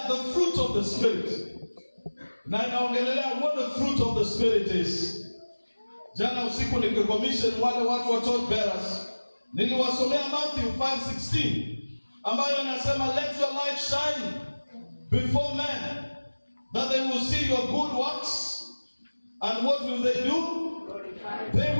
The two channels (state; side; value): inverted; both; correlation -1.00